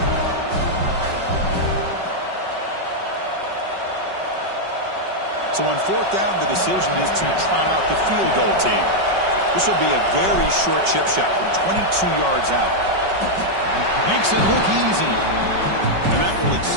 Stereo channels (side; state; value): left; late; 5.3 ms